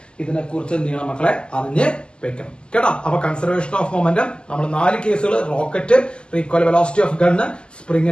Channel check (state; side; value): late; right; 0.049 ms